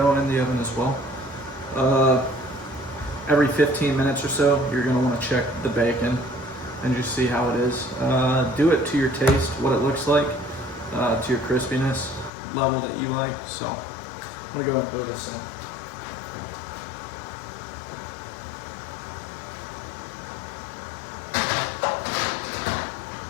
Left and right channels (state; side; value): drops out; right; at 12.3 s